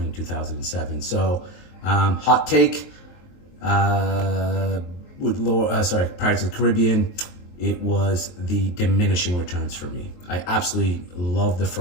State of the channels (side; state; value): right; late; 23 ms